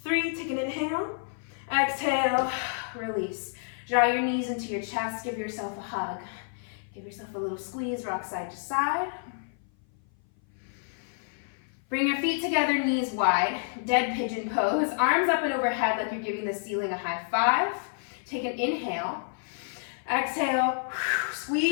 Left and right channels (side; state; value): right; silent; 56 dB below the other